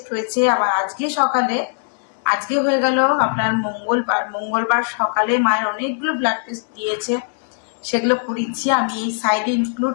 হয়েছে, আবার আজকে হয়ে গেল আপনার মঙ্গলবার সকালে মায়ের অনেকগুলো ব্লাড টেস্ট দিয়েছে, সেগুলো করিয়েছি। আমি এই সাইডে ইনক্লুড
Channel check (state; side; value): silent; right; 66 dB below the other